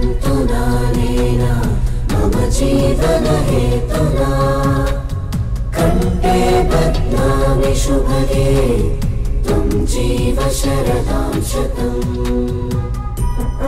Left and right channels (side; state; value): both; identical; correlation 1.00